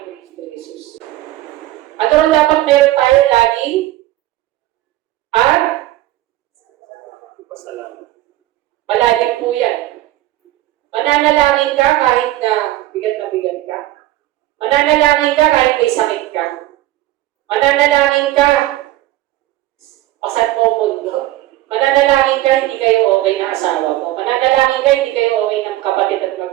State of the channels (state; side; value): quieter; left; 15.7 dB